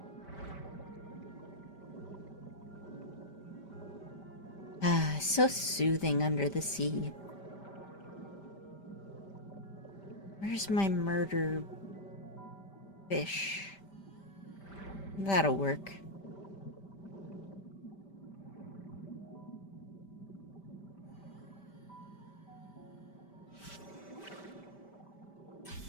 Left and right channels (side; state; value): right; late; 5.1 ms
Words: Ah, so soothing under the sea. Where's my murder fish? That'll work.